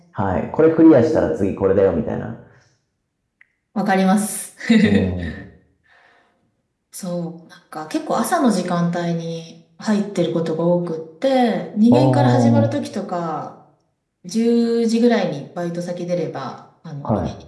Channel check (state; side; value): identical; both; correlation 1.00